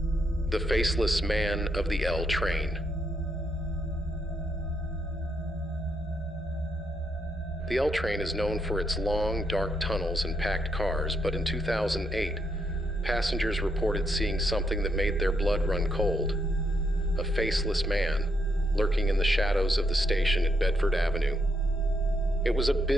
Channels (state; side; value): normal; both; correlation 0.77